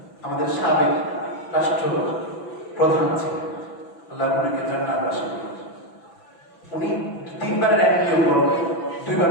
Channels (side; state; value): right; late; 6.0 ms